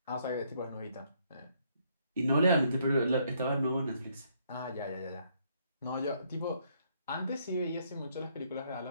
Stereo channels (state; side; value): inverted; both; correlation -0.70